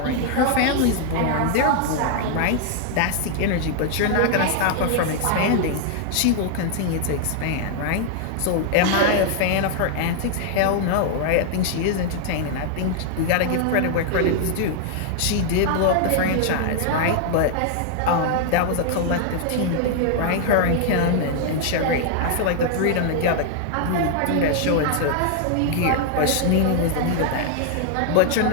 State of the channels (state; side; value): different; both; correlation 0.00